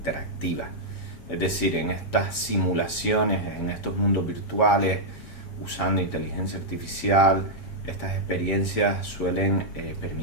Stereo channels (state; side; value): late; right; 7.4 ms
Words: Es decir, en estas simulaciones, en estos mundos virtuales, usando inteligencia artificial, estas experiencias suelen